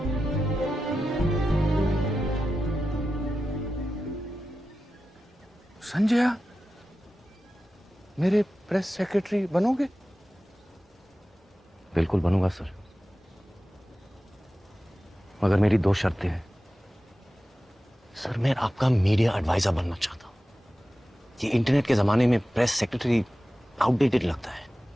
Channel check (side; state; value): both; normal; correlation 0.94